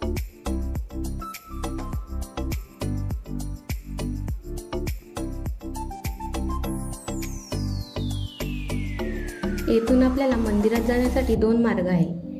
येथून आपल्याला मंदिरात जाण्यासाठी 2 मार्ग आहे,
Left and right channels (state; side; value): identical; both; correlation 1.00